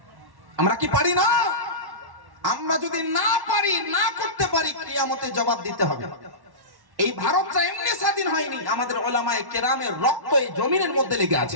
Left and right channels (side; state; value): left; late; 1.1 ms